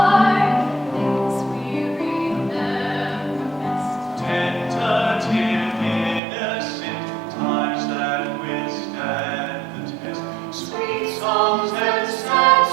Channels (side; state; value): left; drops out; at 6.2 s